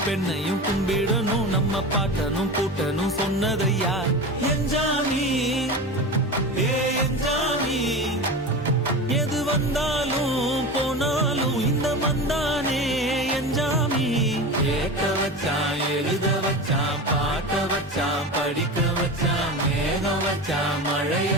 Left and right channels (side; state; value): both; normal; correlation 0.28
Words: பெண்ணையும் கும்பிடணும், நம்ம பாட்டனும் கூட்டனும் சொன்னதையா. என்ஜாமி ஏ என்ஜாமி, எது வந்தாலும் போனாலும் இந்த மந்தானே என்ஜாமி. கேட்க வச்சான், எழுத வச்சான், பாட்ட வச்சான், படிக்க வச்சான், மேகம் வச்சான், மழைய